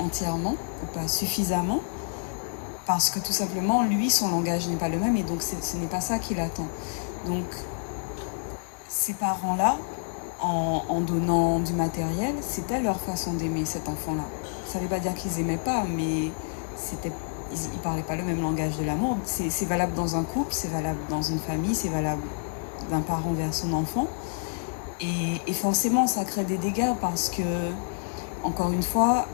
ou pas suffisamment, parce que tout simplement, lui, son langage n'est pas le même, et donc ce n'est pas ça qu'il attend. Donc, ces parents-là, en donnant du matériel, c'était leur façon d'aimer cet enfant-là. Ça ne veut pas dire qu'ils n'aimaient pas, mais ils ne parlaient pas le même langage de l'amour. C'est valable dans un couple, c'est valable dans une famille, c'est valable d'un parent vers son enfant. Et forcément, ça crée des dégâts parce que, encore une fois,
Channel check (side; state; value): right; silent; 59 dB below the other